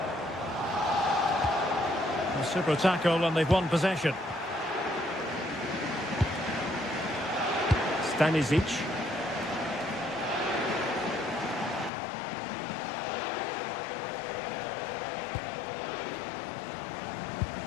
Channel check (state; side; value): drops out; right; at 11.9 s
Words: A super tackle and they've won possession. Stanisic.